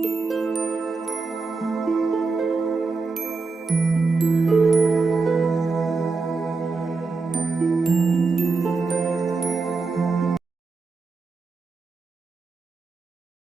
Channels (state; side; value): quieter; left; 4.1 dB